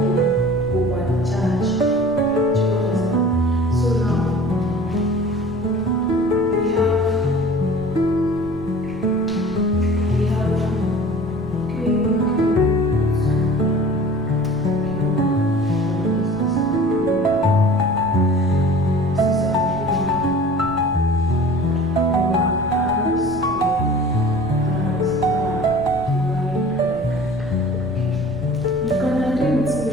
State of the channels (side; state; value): right; noise; rumble, 16 dB below the sound